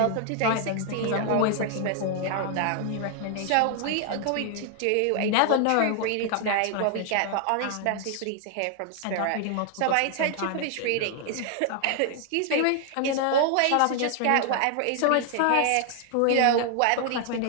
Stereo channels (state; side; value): different; both; correlation 0.00